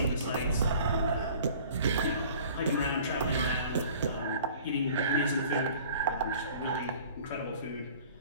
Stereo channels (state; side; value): inverted; both; correlation -0.48